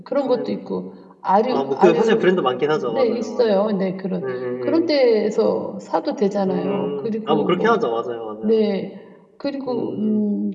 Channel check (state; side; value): identical; both; correlation 1.00